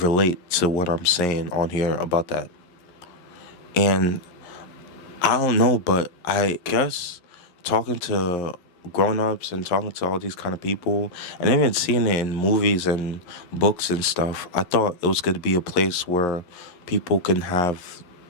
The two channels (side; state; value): right; late; 11 ms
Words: relate to what I'm saying on here about that. And I don't know, but I guess talking to grown-ups and talking to all these kind of people and even seeing it in movies and books and stuff, I thought it was going to be a place where people can have